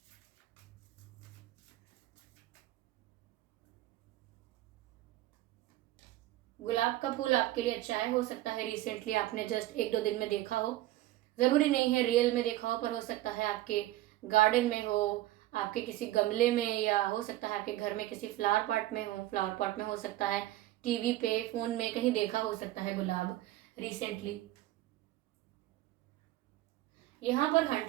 गुलाब का फूल आपके लिए अच्छा है। हो सकता है रिसेंटली आपने जस्ट 1-2 दिन में देखा हो, जरूरी नहीं है रियल में देखा हो, पर हो सकता है आपके गार्डन में हो, आपके किसी गमले में, या हो सकता है आपके घर में किसी फ्लावर पॉट में हो सकता है, टीवी पे, फोन में कहीं देखा हो सकता है गुलाब रिसेंटली। यहाँ पर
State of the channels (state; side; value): quieter; left; 15.9 dB